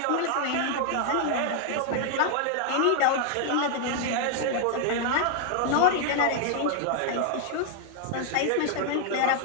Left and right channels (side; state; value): both; different; correlation 0.00